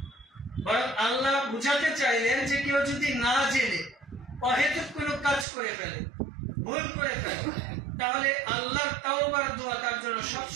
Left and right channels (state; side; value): drops out; left; at 5.5 s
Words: বরং আল্লাহ বুঝাতে চাইলেন যে কেউ যদি না জেনে অহেতুক কোনো কাজ করে ফেলে, ভুল করে ফেলে, তাহলে আল্লাহর তাওবার দোয়া তার জন্য